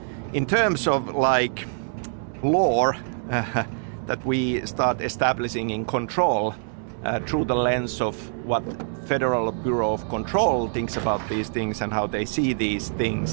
in terms of like lore that we start establishing in Control through the lens of what Federal Bureau of Control thinks about these things and how they see these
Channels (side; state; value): left; silent; digital silence